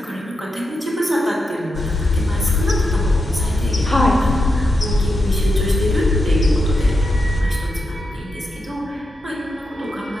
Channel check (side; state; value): both; normal; correlation 0.86